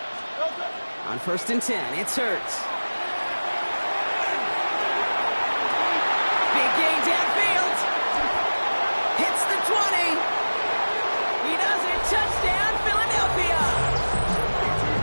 On 1st and 10, it's Hurts. Big gain downfield. Hits the 20. He does it. Touchdown, Philadelphia.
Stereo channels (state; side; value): inverted; both; correlation -1.00